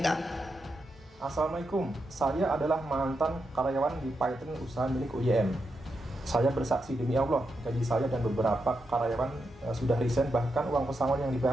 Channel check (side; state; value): both; normal; correlation 0.85